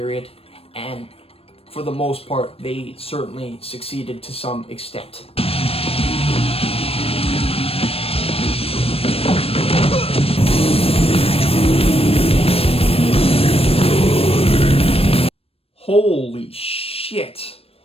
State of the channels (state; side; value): late; right; 0.28 ms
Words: and for the most part, they certainly succeeded to some extent. Holy shit.